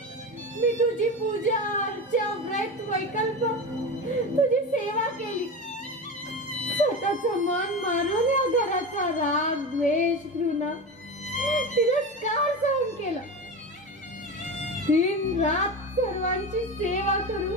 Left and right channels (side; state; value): both; normal; correlation 0.24